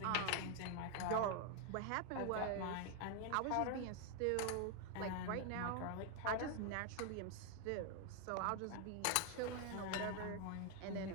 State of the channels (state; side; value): different; both; correlation 0.00